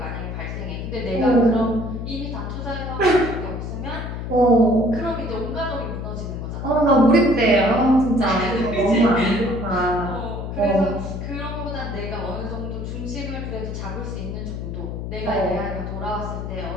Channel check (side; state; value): left; noise; hum, 6 dB below the sound